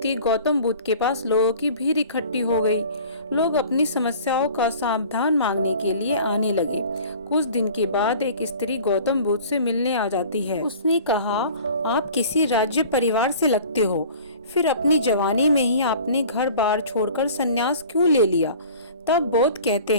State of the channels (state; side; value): inverted; both; correlation -0.45